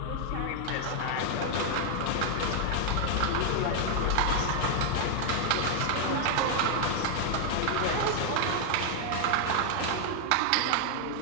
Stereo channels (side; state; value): both; different; correlation 0.00